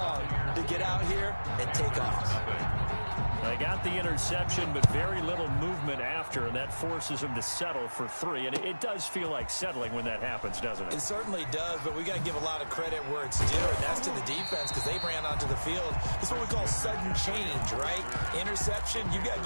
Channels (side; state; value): both; inverted; correlation -1.00